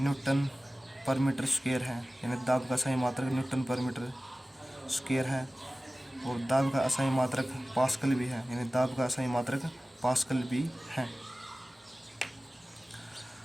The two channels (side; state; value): both; normal; correlation 0.97